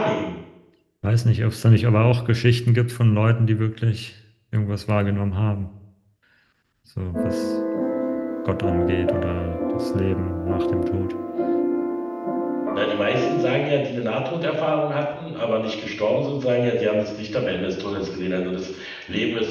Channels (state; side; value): identical; both; correlation 1.00